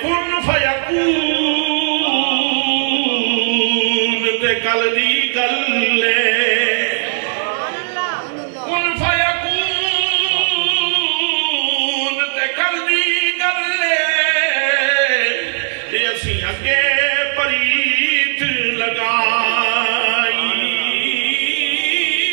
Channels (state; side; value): silent; left; digital silence